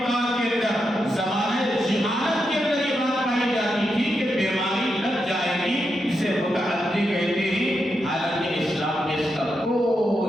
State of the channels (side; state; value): both; normal; correlation 0.85